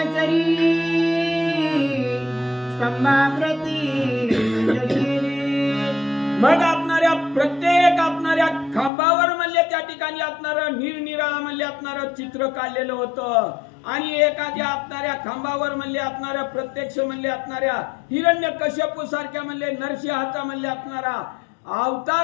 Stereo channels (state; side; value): drops out; right; at 8.9 s